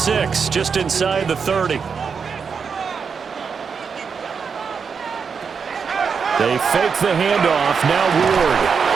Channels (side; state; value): left; quieter; 6.0 dB